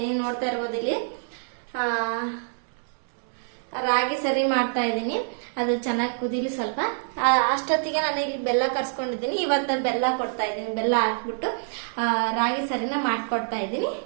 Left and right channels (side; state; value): left; silent; digital silence